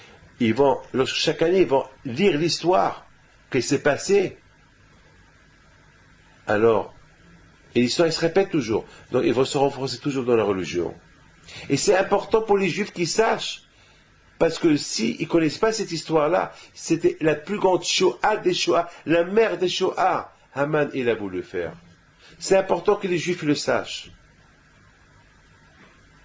chaque année, ils vont lire l'histoire qui s'est passée, alors, et l'histoire, elle se répète toujours. Donc, ils vont se renforcer toujours dans la religion. Et c'est important pour les Juifs qu'ils sachent, parce que s'ils ne connaissent pas cette histoire-là, c'était la plus grande Shoah des Shoah, la mère des Shoah. Haman, il a voulu le faire. C'est important que les Juifs le sachent.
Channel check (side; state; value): both; identical; correlation 1.00